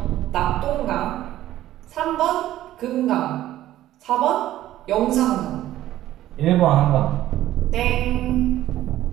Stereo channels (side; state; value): left; quieter; 13.8 dB